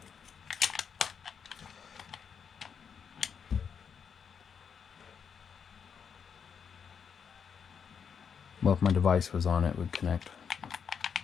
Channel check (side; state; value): right; quieter; 6.9 dB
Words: Well, if my device was on, it would connect.